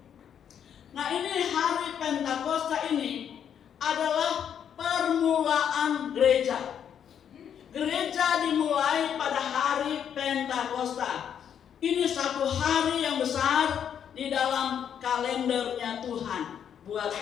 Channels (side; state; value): right; quieter; 8.6 dB